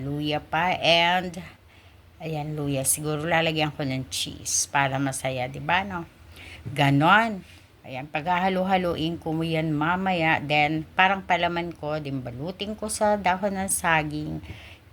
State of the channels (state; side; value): identical; both; correlation 1.00